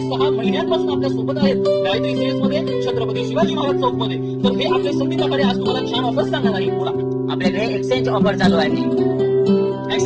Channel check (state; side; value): identical; both; correlation 1.00